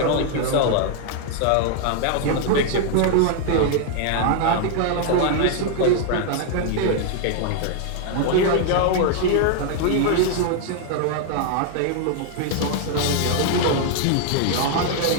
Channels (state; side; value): different; both; correlation 0.00